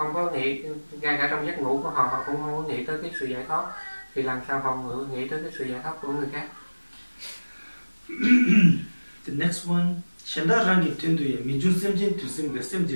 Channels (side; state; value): both; inverted; correlation -1.00